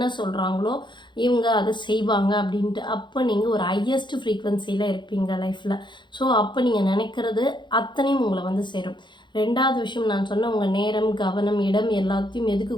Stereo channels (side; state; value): right; late; 0.23 ms